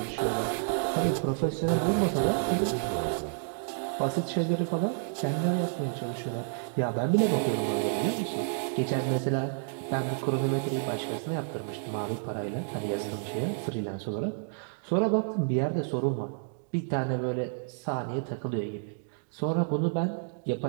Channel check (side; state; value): left; silent; digital silence